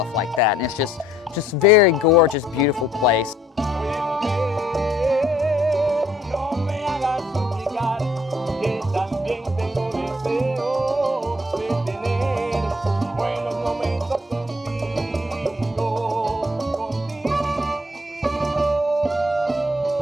like that. And it's just very gorgeous, beautiful place.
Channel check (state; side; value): normal; both; correlation 0.64